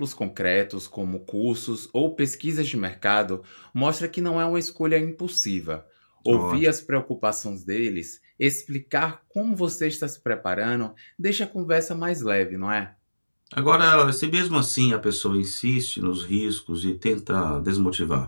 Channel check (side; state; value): both; inverted; correlation -1.00